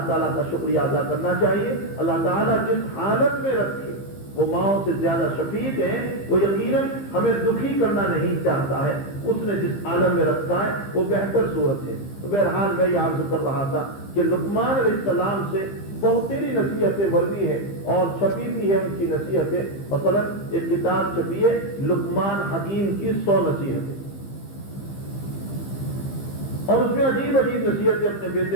تعالیٰ کا شکریہ ادا کرنا چاہیے۔ اللہ تعالیٰ جس حالت میں رکھے وہ ماؤں سے زیادہ شفیق ہیں، وہ یقیناً ہمیں دکھی کرنا نہیں چاہتا ہے، اس نے جس عالم میں رکھا ہے وہ بہتر صورت ہے۔ تو بہرحال میں یہ عرض کر رہا تھا کہ لقمان علیہ السلام سے بہت تیری نصیحتیں مروی ہیں اور چھپی بھی ہے ان کی نصیحتیں، مثلا ایک کتاب چھپی ہے لقمان حکیم کی 100 نصیحتیں، اور اس میں عجیب عجیب نصیحتیں اپنے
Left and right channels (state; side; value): late; right; 15 ms